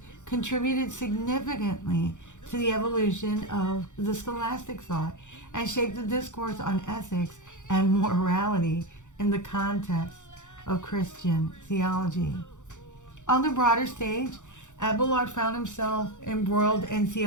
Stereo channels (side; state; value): right; late; 0.85 ms